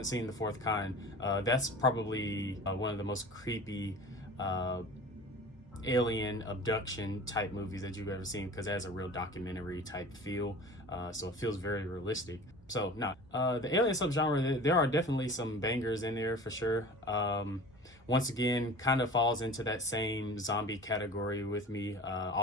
seen The Fourth Kind, that's probably one of the most creepy alien abduction type movies that you've ever seen, because it has a real documentary type feel. So it feels very realistic. So now, the alien subgenre, there are definitely some bangers in there for sure. Once again, kind of falls into that same zombie category with me.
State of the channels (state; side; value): normal; both; correlation 0.39